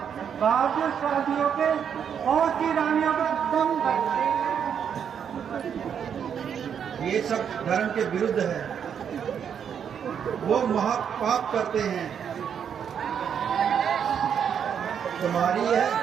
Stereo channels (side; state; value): left; quieter; 7.9 dB